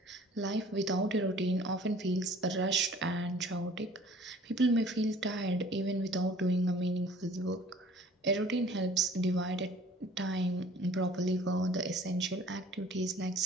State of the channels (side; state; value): both; normal; correlation 0.51